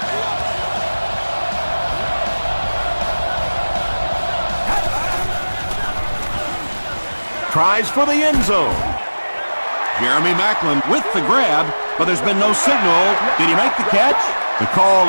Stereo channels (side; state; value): both; inverted; correlation -1.00